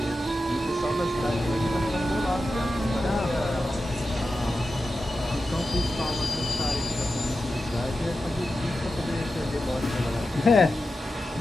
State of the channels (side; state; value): both; normal; correlation 0.92